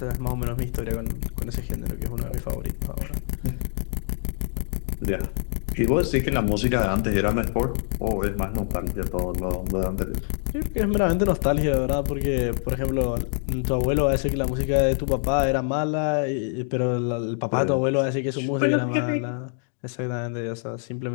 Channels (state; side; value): silent; right; 62 dB below the other